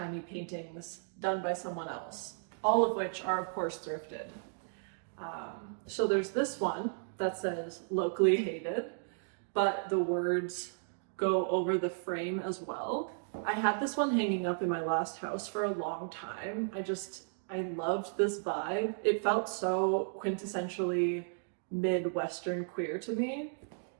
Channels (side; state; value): left; silent; digital silence